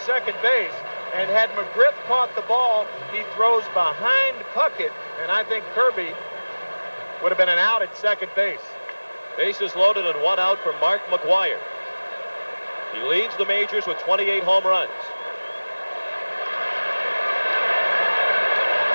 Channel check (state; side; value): inverted; both; correlation -1.00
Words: second base. And had McGriff caught the ball, he throws behind Puckett. And I think Kirby would have been an out at second base. Bases loaded and 1 out for Mark McGwire. He leads the majors with 28 home runs.